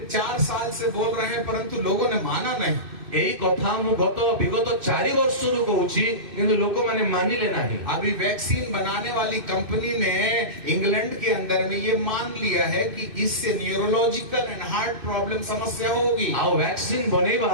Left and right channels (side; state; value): left; late; 2.6 ms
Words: 4 साल से बोल रहे हैं, परंतु लोगों ने माना नहीं। यही कथा मु विगत 4 वर्ष कहूची, किंतु लोक माने मानिले नहीं। अभी वैक्सीन बनाने वाली कंपनी ने इंग्लैंड के अंदर में ये मान लिया है कि इससे न्यूरोलॉजिकल एंड हार्ट प्रॉब्लम समस्या होगी। आ वैक्सीन